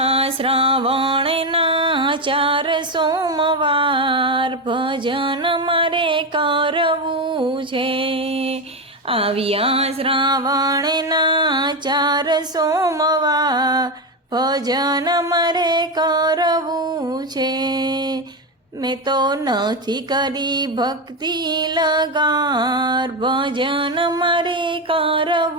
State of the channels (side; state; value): both; normal; correlation 0.12